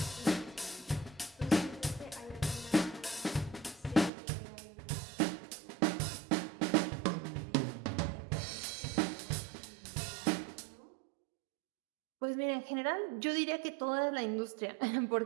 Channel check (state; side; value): drops out; left; at 4.1 s